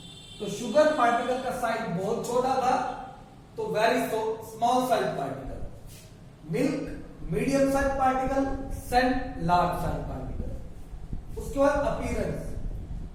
तो शुगर पार्टिकल का साइज बहुत छोटा था, तो very small size particle. Milk medium size particle, sand large size particle. उसके बाद अपीयरेंस,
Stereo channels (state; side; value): identical; both; correlation 1.00